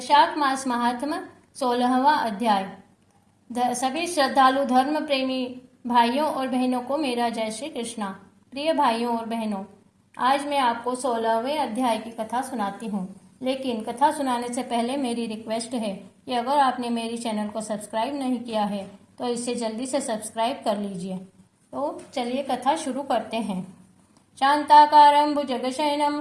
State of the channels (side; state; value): both; identical; correlation 1.00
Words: वैशाख मास महात्म 16वां अध्याय। सभी श्रद्धालु धर्म प्रेमी भाइयों और बहनों को मेरा जय श्री कृष्णा। प्रिय भाइयों और बहनों, आज मैं आपको 16वें अध्याय की कथा सुनाती हूँ। लेकिन कथा सुनाने से पहले मेरी रिक्वेस्ट है कि अगर आपने मेरी चैनल को सब्सक्राइब नहीं किया है तो इसे जल्दी से सब्सक्राइब कर लीजिए। तो चलिए कथा शुरू करते हैं। शांताकारं भुजगशयनं